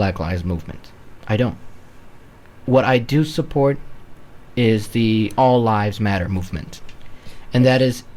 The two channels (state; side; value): identical; both; correlation 1.00